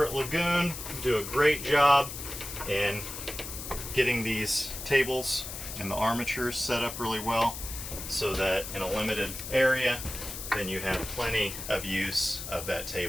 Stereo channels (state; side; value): noise; left; hiss, 8 dB below the sound